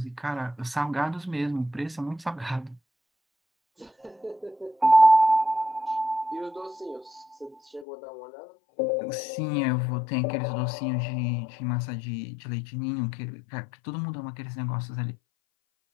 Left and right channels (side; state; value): right; drops out; at 7.9 s